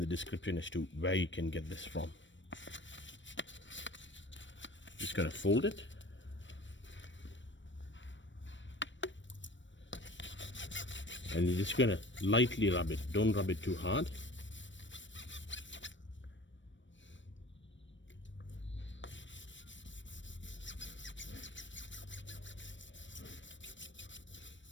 description as to where you can get this from. Just going to fold it. And you're just going to lightly rub it. Don't rub it too hard.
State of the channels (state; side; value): late; right; 0.54 ms